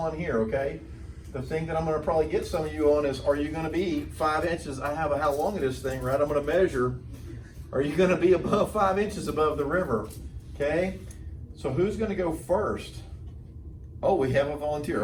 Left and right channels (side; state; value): both; identical; correlation 1.00